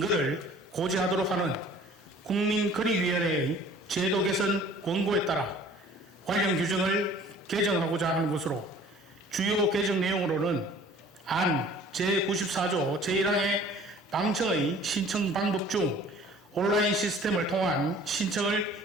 고지하도록 하는 국민권익위원회의 제도 개선 권고에 따라 관련 규정을 개정하고자 하는 것으로 주요 개정 내용으로는 안 제94조 제1항의 방청의 신청 방법 중 온라인 시스템을 통한 신청을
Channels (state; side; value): normal; both; correlation 0.50